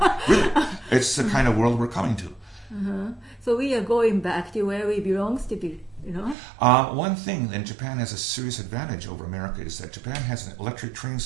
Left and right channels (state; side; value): drops out; left; at 6.4 s